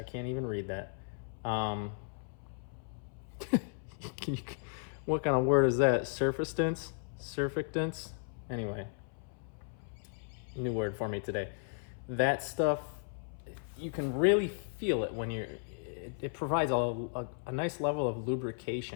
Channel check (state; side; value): silent; right; 54 dB below the other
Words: can't even read that. What kind of word is that? Surfactants? Anyway, new word for me today. That stuff, you can really feel it when it provides a nice level of